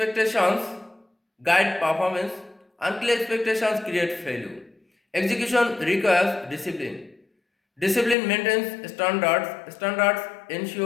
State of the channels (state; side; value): drops out; right; at 8.2 s